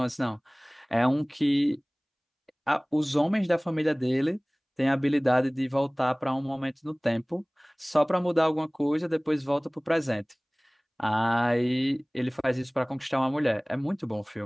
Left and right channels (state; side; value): identical; both; correlation 1.00